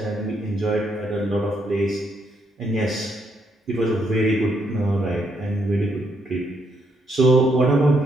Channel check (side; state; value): both; normal; correlation 0.75